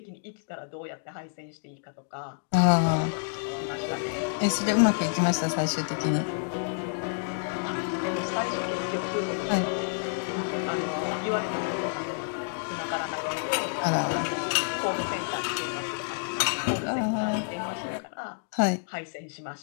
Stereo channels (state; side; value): silent; right; digital silence